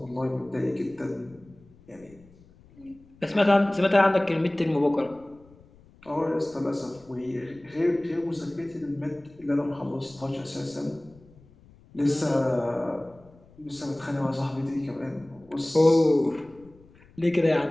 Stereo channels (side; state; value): left; noise; rumble, 26 dB below the sound